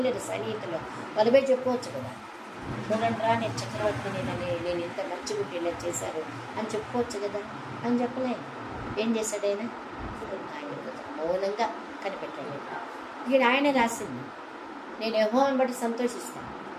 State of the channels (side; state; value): both; identical; correlation 1.00